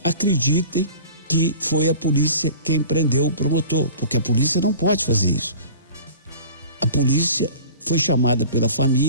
acreditem que foi a polícia quem prendeu o promotor, porque a polícia não pode fazer isso. A polícia foi chamada pela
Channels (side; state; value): both; inverted; correlation -0.42